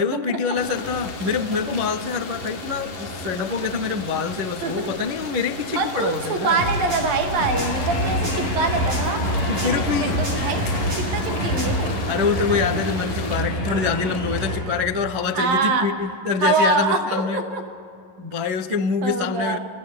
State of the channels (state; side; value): late; left; 11 ms